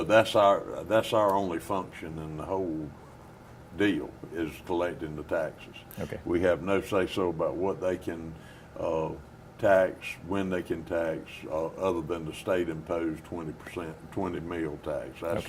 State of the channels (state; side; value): identical; both; correlation 1.00